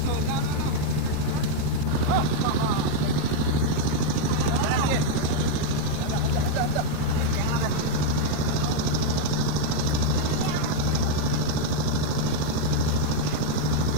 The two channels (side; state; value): both; different; correlation 0.00